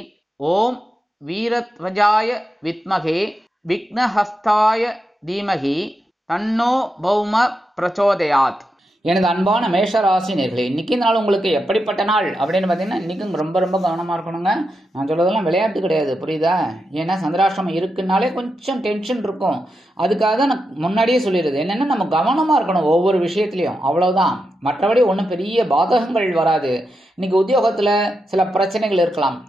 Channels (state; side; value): normal; both; correlation 0.87